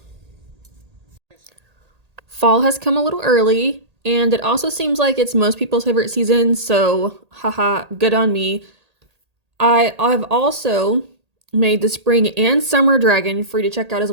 Fall has come a little early, and it also seems like it's most people's favorite season, so haha, good on me. I've also made the spring and summer dragon for you to check out as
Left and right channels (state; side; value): late; left; 1.8 ms